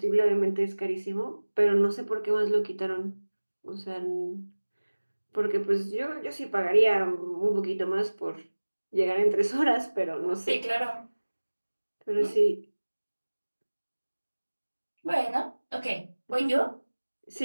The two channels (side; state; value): both; inverted; correlation -1.00